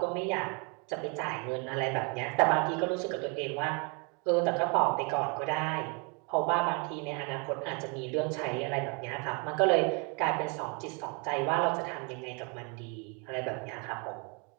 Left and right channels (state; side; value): quieter; left; 33.8 dB